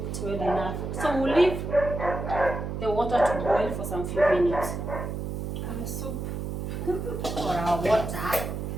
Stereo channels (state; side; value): noise; right; hum, 4 dB below the sound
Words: well enough. So we'll leave the water to boil for some few minutes. Soup. our water